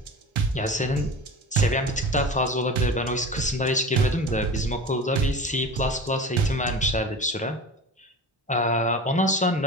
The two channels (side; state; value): both; normal; correlation 0.33